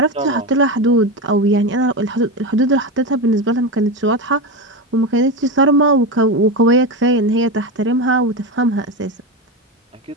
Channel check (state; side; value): normal; both; correlation 0.17